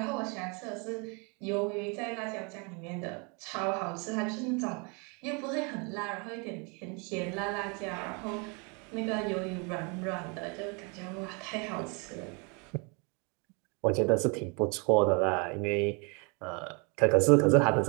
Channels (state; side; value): quieter; left; 33.0 dB